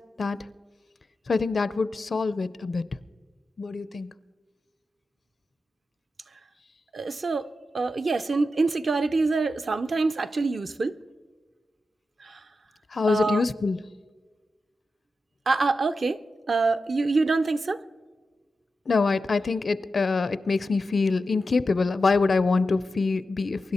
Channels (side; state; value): both; normal; correlation 0.90